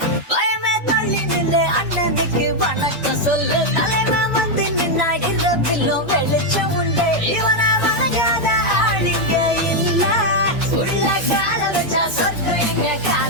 பயமே தள்ளி நின்று அண்ணனுக்கு வணக்கம் சொல்லு தலைவன் வந்து நின்னா இரவிலும் வெளிச்சம் உண்டு இவனை வணங்காத ஆளுங்க இல்ல உள்ள கால வச்சா சொர்க்கம் எங்க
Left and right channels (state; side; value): normal; both; correlation 0.01